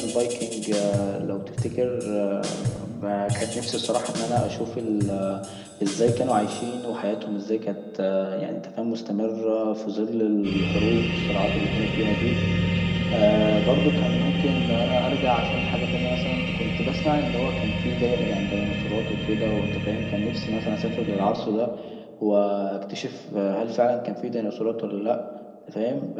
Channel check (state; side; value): identical; both; correlation 1.00